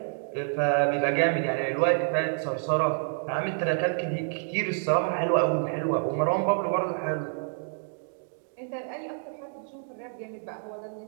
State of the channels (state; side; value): silent; left; digital silence